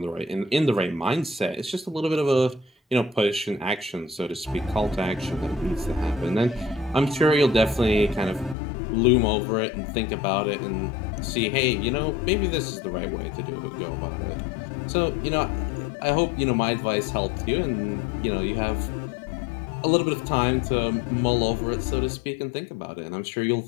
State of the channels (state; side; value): drops out; right; at 8.6 s